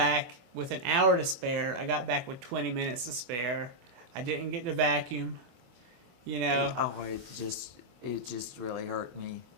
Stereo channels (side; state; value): left; late; 24 ms